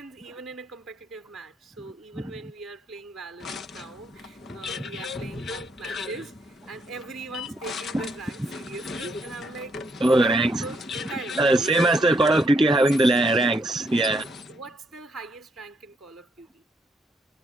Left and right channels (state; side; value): normal; both; correlation 0.73